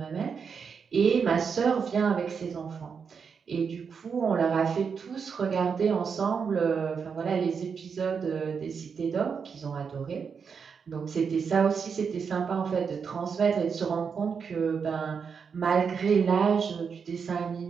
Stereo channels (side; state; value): left; quieter; 6.1 dB